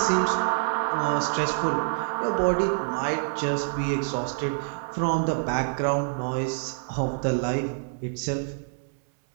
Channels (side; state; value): left; silent; 60 dB below the other